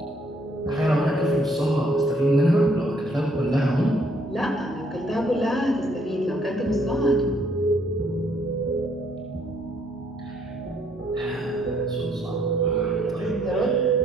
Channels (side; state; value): both; normal; correlation 0.67